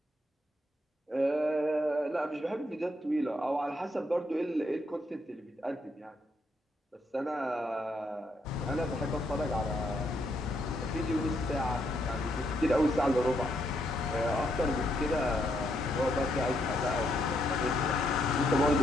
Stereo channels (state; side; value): normal; both; correlation 0.75